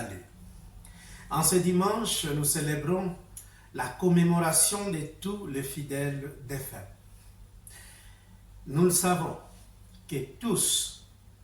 En ce dimanche, nous célébrons la commémoration de tous les fidèles défunts. Nous le savons que tout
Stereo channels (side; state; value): both; identical; correlation 1.00